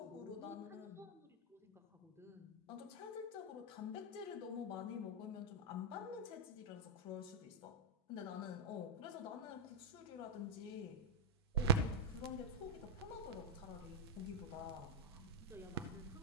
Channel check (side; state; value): both; normal; correlation -0.04